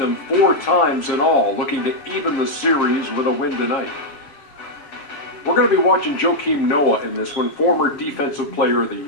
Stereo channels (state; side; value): late; right; 7.4 ms